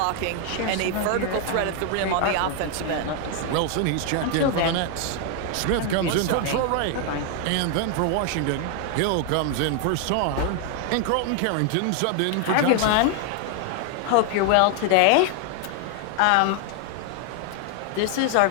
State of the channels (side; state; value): both; different; correlation 0.00